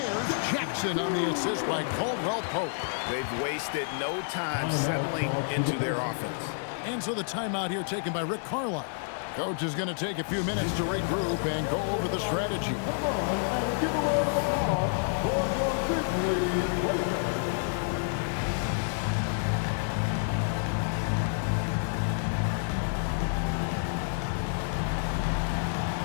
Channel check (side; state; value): right; silent; digital silence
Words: Jackson on the assist by Caldwell Pope. They've wasted no time settling into their offense. And so the timeout here taken by Rick Carlisle. Coach is going to take a few minutes to regroup and go over the strategy.